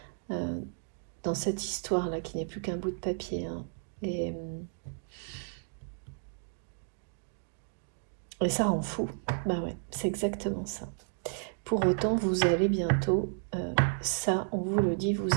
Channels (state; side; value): silent; left; digital silence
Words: dans cette histoire-là qui n'est plus qu'un bout de papier. Et ça rend fou. Bah ouais, c'est exactement ça. Pour autant, vous allez bientôt, ça, on vous le dit, vous